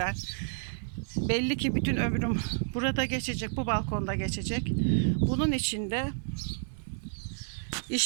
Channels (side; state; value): left; silent; digital silence